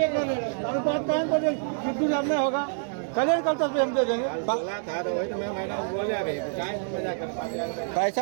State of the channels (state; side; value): silent; left; digital silence